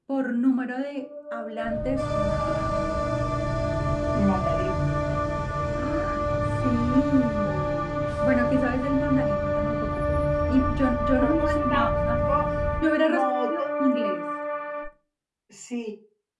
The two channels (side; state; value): both; identical; correlation 1.00